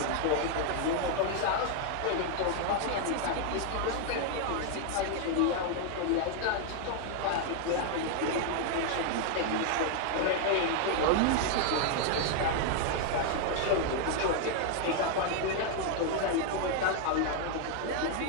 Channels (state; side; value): different; both; correlation 0.00